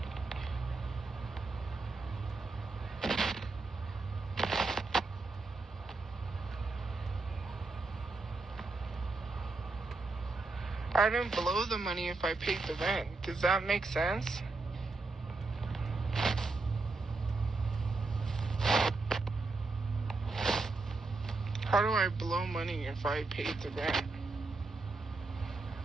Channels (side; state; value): left; quieter; 3.6 dB